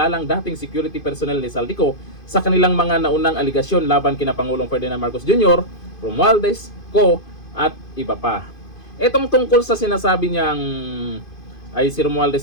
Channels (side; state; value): right; late; 2.5 ms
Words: dating security personnel ni Saldico sa kanilang mga naunang aligasyon laban kina Pangulong Ferdinand Marcos Jr., Romualdez, Co. at iba pa. Etong tungkol sa sinasabi niyang ay si Romualdez